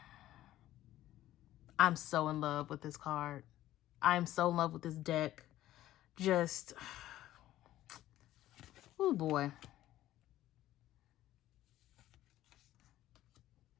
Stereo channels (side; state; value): right; quieter; 14.2 dB